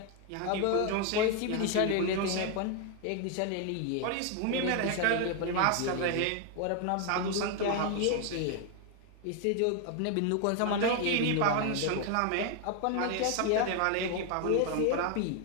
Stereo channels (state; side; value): different; both; correlation 0.01